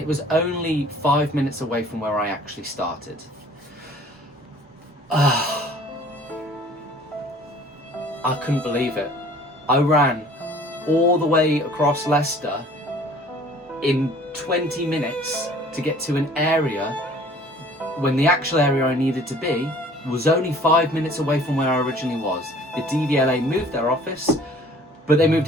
was only 5 minutes away from where I actually started. I couldn't believe it. I ran all the way across Leicester in 20 minutes to get to an area when the actual area I needed to be was only 5 minutes away from where I originally was. The DVLA moved their office, but they moved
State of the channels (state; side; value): normal; both; correlation 0.51